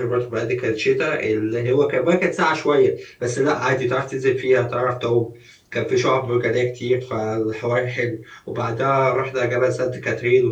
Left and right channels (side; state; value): both; identical; correlation 1.00